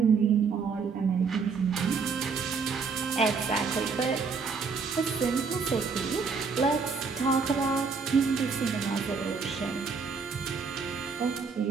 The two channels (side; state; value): left; quieter; 5.2 dB